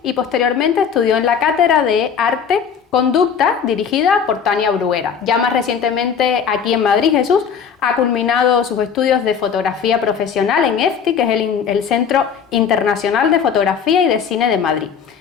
y posteriormente estudió en la Cátedra de Arte Conducta, dirigida por Tania Bruguera. Ya más recientemente aquí en Madrid, Jesús ha culminado sus estudios de fotografía profesional en EFTI, que es el Centro Internacional de Fotografía y de Cine de Madrid.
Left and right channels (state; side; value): quieter; right; 7.1 dB